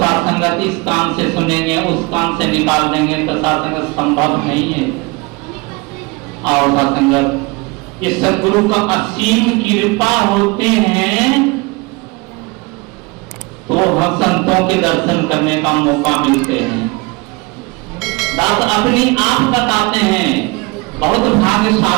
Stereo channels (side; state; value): left; quieter; 25.9 dB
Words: इस काम से सुनेंगे उस काम से निकाल देंगे तो सासंगत संभव नहीं है। और सासंगत ये सद्गुरु का असीम कृपा होते हैं तो हम संतों के दर्शन करने का मौका मिलते हैं। दास अपनी आप बताते हैं बहुत